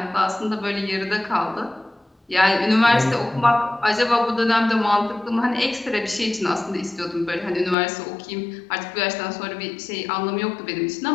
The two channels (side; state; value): right; drops out; at 7.8 s